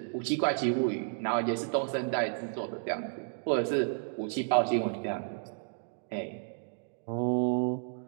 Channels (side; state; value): left; silent; 56 dB below the other